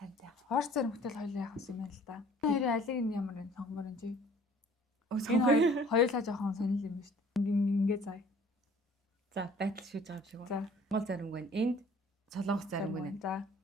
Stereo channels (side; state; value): both; normal; correlation 0.53